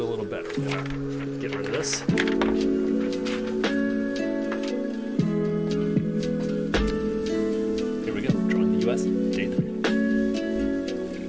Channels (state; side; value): identical; both; correlation 1.00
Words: a little better. We're gonna get rid of this. Here we go, drawing the U.S., day 3.